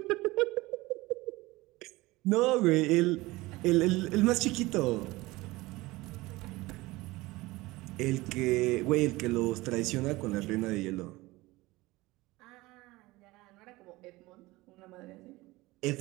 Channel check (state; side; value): quieter; left; 20.4 dB